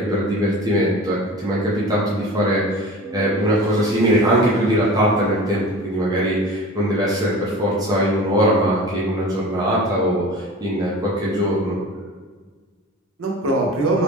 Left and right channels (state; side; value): normal; both; correlation 0.37